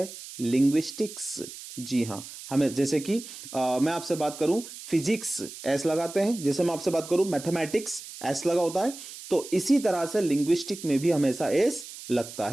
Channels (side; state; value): right; noise; hiss, 13 dB below the sound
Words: लिंग्विस्टिक्स। जी हां, हमें जैसे कि मैं आपसे बात करूं फिजिक्स एस लगाते हैं, जैसे मैं आपसे बात करूं मैथमेटिक्स एस लगा होता है, तो इसी तरह से लिंग्विस्टिक में भी हमेशा एस लगता